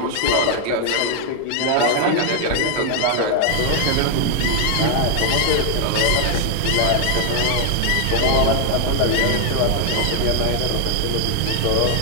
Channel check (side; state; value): both; different; correlation 0.00